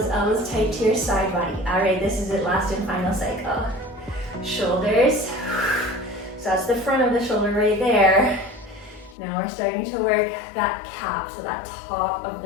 elbows tight to your side body. All right, this is it, last and final cycle. Shoulders. So that's the front of the shoulder right there. Now we're starting to work that cap, so that top of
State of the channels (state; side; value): drops out; right; at 9.2 s